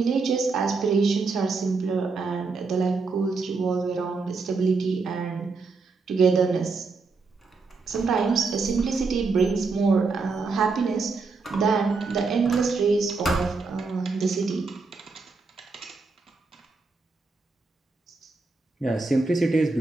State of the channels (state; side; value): quieter; left; 4.1 dB